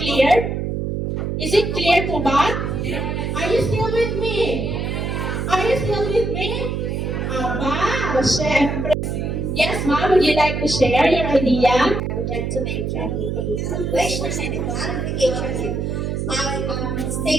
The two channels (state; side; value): noise; right; hum, 2 dB below the sound